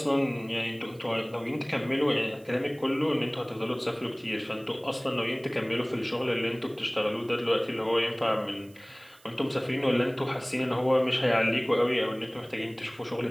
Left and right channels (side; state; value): right; noise; hiss, 27 dB below the sound